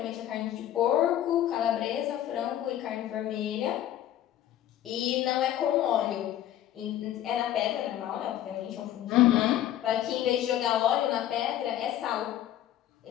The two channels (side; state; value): right; quieter; 12.1 dB